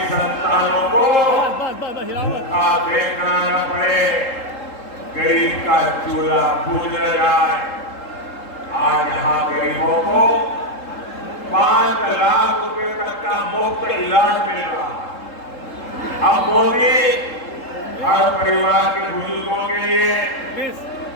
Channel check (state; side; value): late; right; 3.7 ms